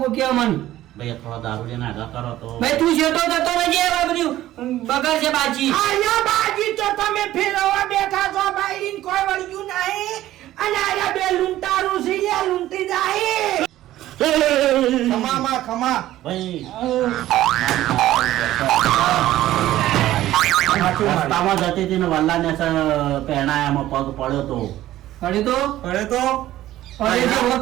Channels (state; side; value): quieter; left; 14.3 dB